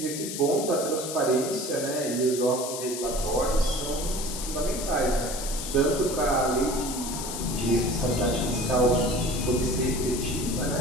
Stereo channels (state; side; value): noise; left; hiss, 7 dB below the sound